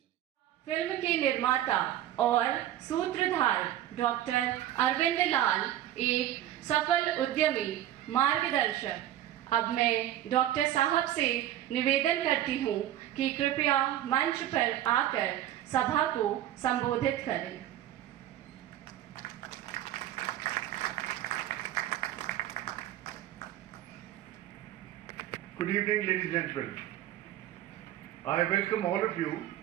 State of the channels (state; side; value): quieter; left; 12.6 dB